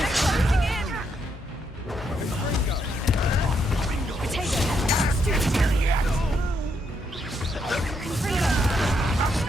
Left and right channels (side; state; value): both; normal; correlation 0.77